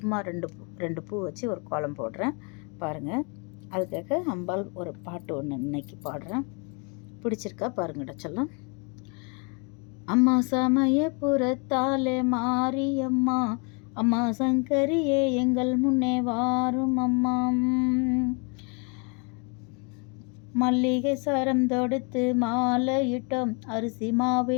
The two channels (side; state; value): right; quieter; 34.5 dB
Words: ரெண்டு பூ வச்சு ஒரு கோலம் போடுறேன் பாருங்கள். அதுக்காக அம்பாள் ஒரு பாட்டு ஒன்று இன்னைக்கு பாடுறேன். பிடிச்சிருக்கா பாருங்கடா சொல்லும். அம்மா சமயபுரத்தாலே மாரியம்மா, அம்மா சங்கரியே எங்கள் முன்னே வாரும் அம்மா. மல்லிகை சரம் தொடுத்து மாலையிட்டோம், அரிசி